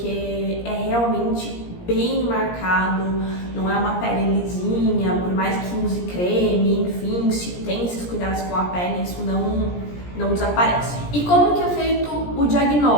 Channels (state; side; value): late; right; 17 ms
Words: é realmente bem marcado, não é uma pele lisinha, por mais que use creme, enfim, se tem esses cuidados com a pele, isso não desaparece. E como que é feito o